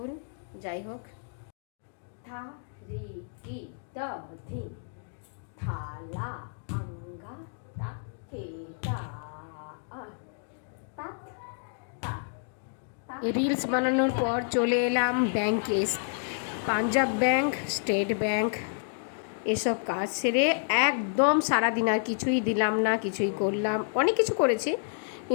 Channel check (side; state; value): right; silent; digital silence